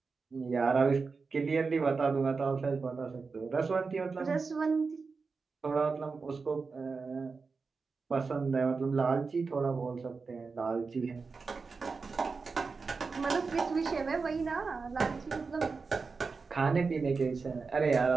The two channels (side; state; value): left; quieter; 4.6 dB